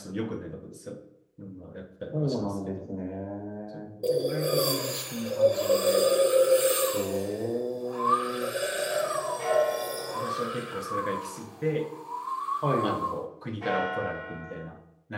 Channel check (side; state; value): both; identical; correlation 1.00